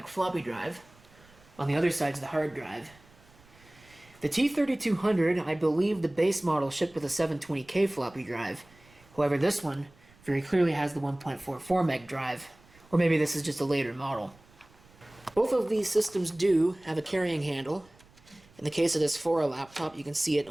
floppy drive. On the other side's the hard drive. The T3200, I believe the base model shipped with a 720K floppy drive. However, this one very clearly has the 1.44 meg drive. Or maybe this is just a later model. Both of these systems do have a carrying handle. In the case of this Fora laptop, you can see it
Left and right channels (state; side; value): noise; right; rumble, 27 dB below the sound